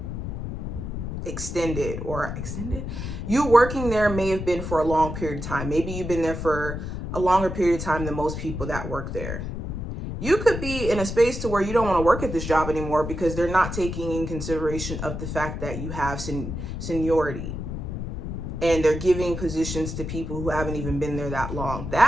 extended. You working there may have been for a long period of time. Maybe you've been there for a longer period of time than most people that work there. You could be in a space to where you don't want to work at this job anymore because they're not taking in consideration of the fact that you have seniority, and they're giving positions to people who haven't even been there that long.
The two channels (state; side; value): noise; left; rumble, 5 dB below the sound